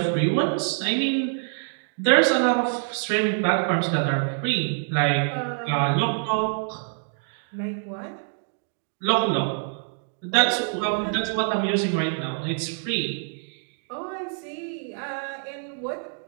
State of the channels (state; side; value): silent; left; 61 dB below the other